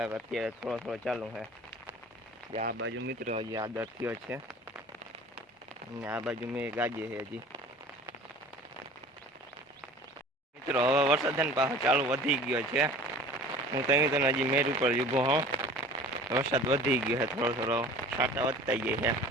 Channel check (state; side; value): normal; both; correlation 0.44